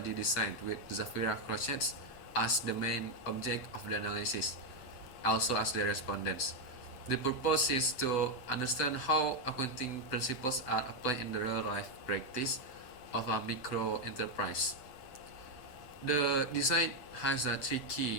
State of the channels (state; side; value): late; right; 7.9 ms